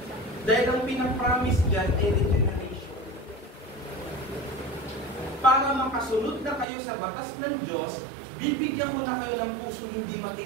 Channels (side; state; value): left; drops out; at 6.7 s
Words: Dahil ang pinapromise dyan ay regeneration. Para makasunod na kayo sa batas ng Diyos, bibigyan ko na kayo ng puso hindi